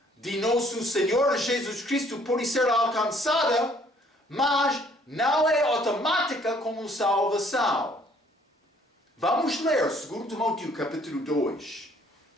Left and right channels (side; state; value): both; normal; correlation 0.61